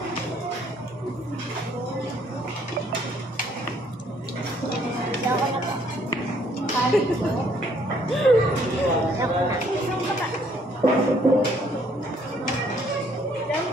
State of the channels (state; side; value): normal; both; correlation 0.64